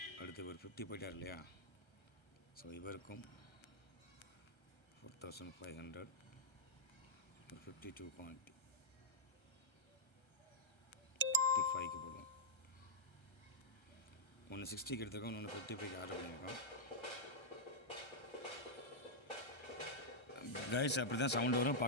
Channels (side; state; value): right; late; 1.3 ms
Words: அடுத்து ஒரு 50 போயிட்டார் இல்லையா? ஸோ இவருக்கும் 4500 ஒரு 52 குவான்டிட்டி 55க்கு போடுவோம். ஒன்று 60க்கு எடுத்துருக்கோம், ஒன்று 55க்கு ஆர்டர் பண்ணியிருக்கோம். கைஸ் அப்படி தான் சவுண்டு வரும்.